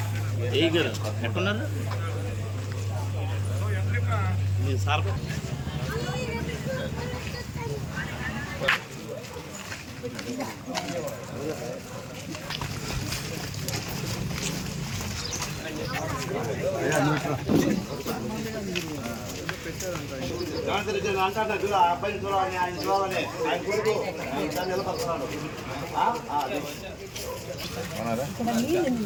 ఎట్టున్నారు సార్? అబ్బాయిని చూడాలని, ఆయన చూడాలని ఆయన కొడుకు నిలబడుతున్నాడు.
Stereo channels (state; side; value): identical; both; correlation 1.00